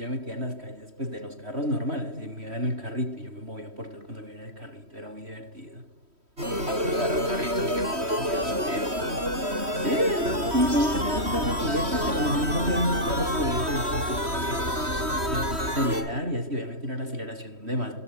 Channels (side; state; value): left; late; 3.1 ms